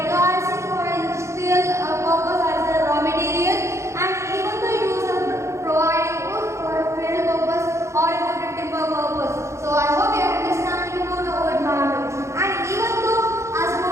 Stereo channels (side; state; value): left; late; 0.14 ms